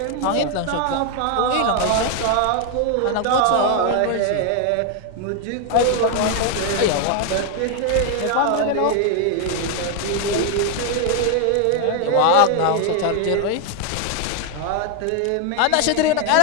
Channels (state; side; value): different; both; correlation 0.01